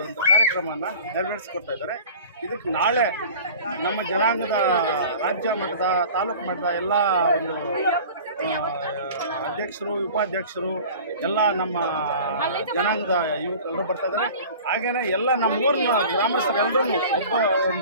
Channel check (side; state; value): both; inverted; correlation -0.41